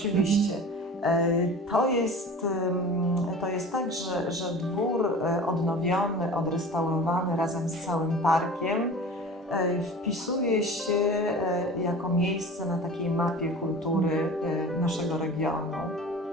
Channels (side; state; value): both; normal; correlation 0.38